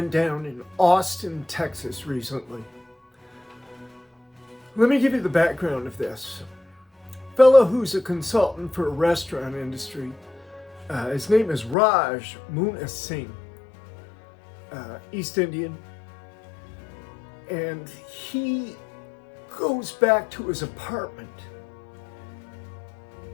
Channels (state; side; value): drops out; right; at 11.8 s